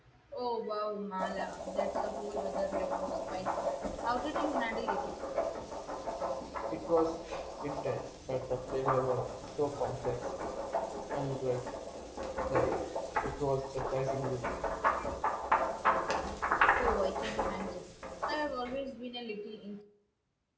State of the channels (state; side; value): identical; both; correlation 1.00